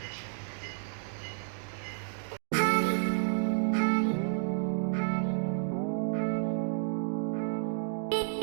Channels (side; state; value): left; silent; digital silence